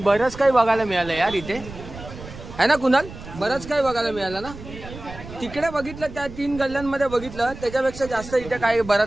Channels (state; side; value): noise; right; rumble, 14 dB below the sound